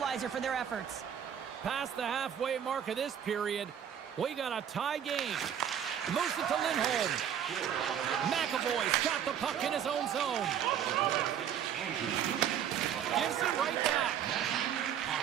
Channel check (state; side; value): quieter; left; 9.2 dB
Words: for their efforts. Past the halfway mark of this period, we got a tie game. Moves it to Lindholm. McAvoy's got the puck in his own zone. Gives it right back.